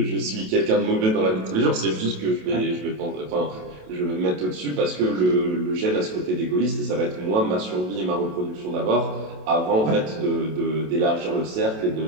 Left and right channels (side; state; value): left; late; 27 ms